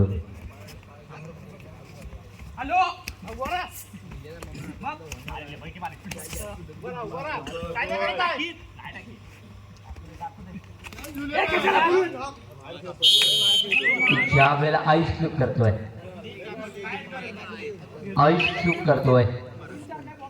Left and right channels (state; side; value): identical; both; correlation 1.00